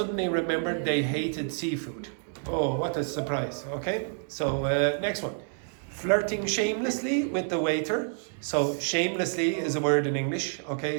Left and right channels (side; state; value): left; silent; digital silence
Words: remembered they hated seafood. Oh, what a surprise. Okay? So next one. Flirting shamelessly with the waiter. So shamelessly is a word in English.